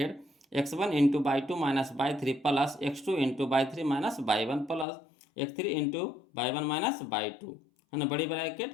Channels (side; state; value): right; drops out; at 4.9 s